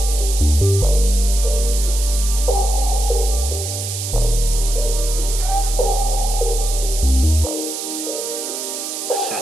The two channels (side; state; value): right; noise; hiss, 6 dB below the sound